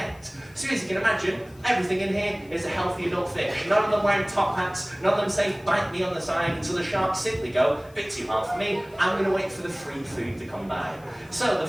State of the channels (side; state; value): left; noise; hiss, 28 dB below the sound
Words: So as you can imagine, everything in here is a healthy adult fish. None of them wearing top hats, none of them say bite me on the side, until the sharks simply go, bit too hard for me, I'm going to wait for the free food to come by. So the